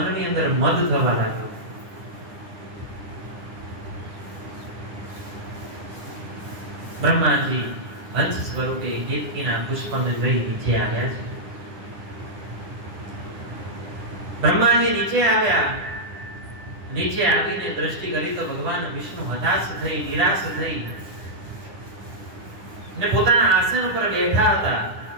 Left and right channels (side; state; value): left; late; 9.8 ms